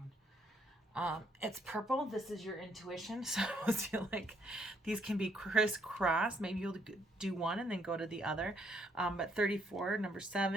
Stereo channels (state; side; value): normal; both; correlation 0.71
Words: It's purple. This is your intuition. So I feel like these can be crisscross. Maybe you'll do one and then go to the other. But 34, number